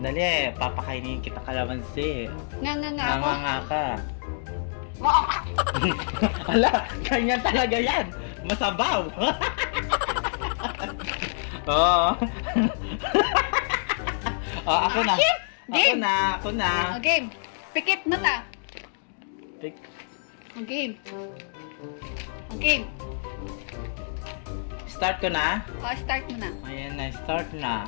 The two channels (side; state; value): right; silent; digital silence